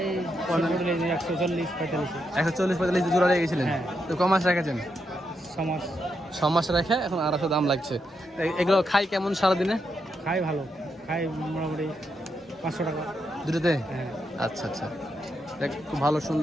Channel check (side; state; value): both; normal; correlation 0.82